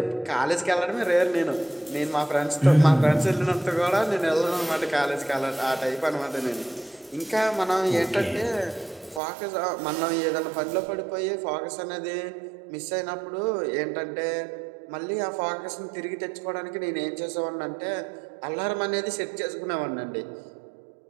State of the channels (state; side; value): drops out; left; at 9.2 s